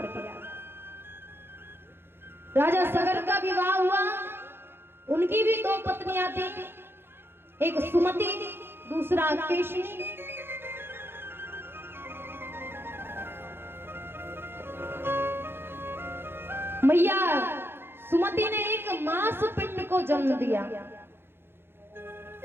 गया। राजा सगर का विवाह हुआ। उनकी भी दो पत्नियां थी, एक सुमति, दूसरा केशनी। मैया सुमति ने एक मांस पिंड को जन्म दिया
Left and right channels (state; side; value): late; left; 0.11 ms